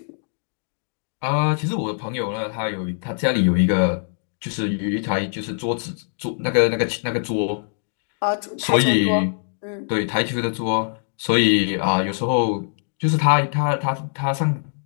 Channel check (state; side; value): silent; right; digital silence